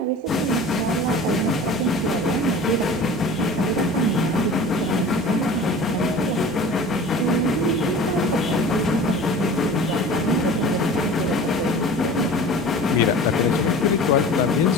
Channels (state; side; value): normal; both; correlation 0.40